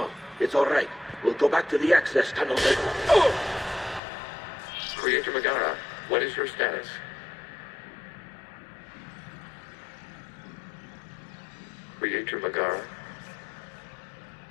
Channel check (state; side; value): drops out; right; at 4.0 s